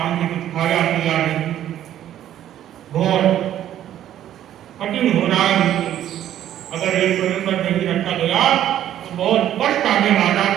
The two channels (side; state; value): left; quieter; 11.6 dB